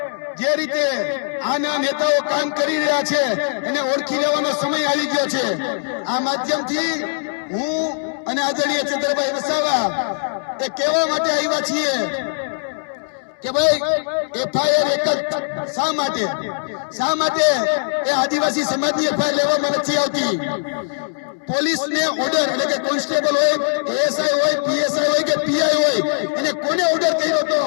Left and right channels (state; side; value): silent; right; digital silence